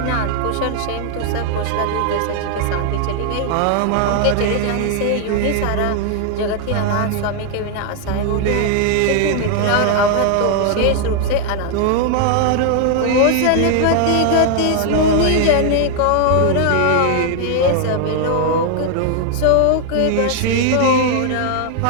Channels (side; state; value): both; different; correlation 0.00